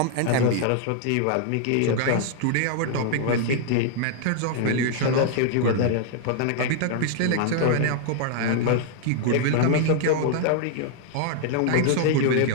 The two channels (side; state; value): both; different; correlation -0.01